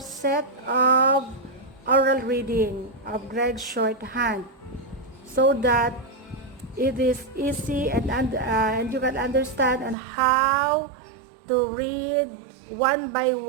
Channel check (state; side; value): drops out; left; at 10.0 s